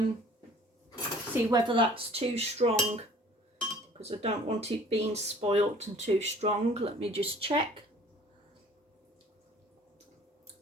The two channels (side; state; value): both; normal; correlation 0.51